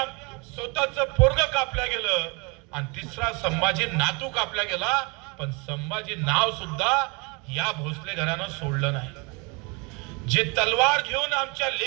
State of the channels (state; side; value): quieter; left; 29.9 dB